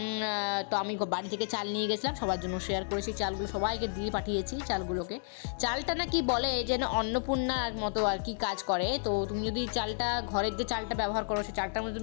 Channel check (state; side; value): silent; right; digital silence